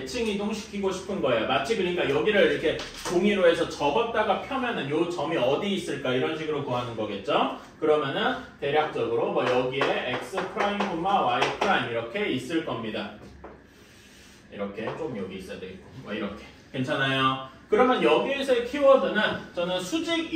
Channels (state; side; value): identical; both; correlation 1.00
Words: 이동시키고 싶은 거예요. 마치 그러니까 여기를 이렇게 종이로 해서 접었다가 펴면은 요 점이 어디 있을까 이런 식으로 구하는 거겠죠. 그러면은 대략적으로 뭐 여기에 x 프라임, y 프라임 이렇게 있을 겁니다. 이렇게 좀 여기 있어야 되겠고 뭐 이렇게 괜찮아요. 그러면 여기에서의 키워드는 저는 수직